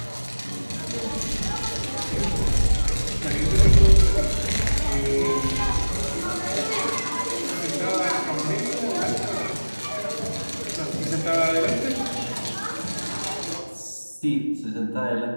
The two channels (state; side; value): inverted; both; correlation -1.00